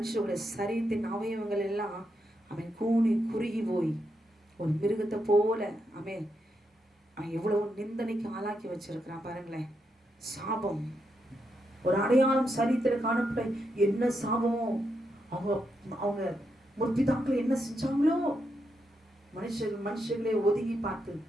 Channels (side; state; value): both; normal; correlation 0.82